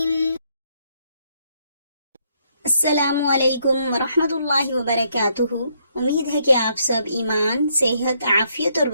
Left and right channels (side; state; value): both; inverted; correlation -0.73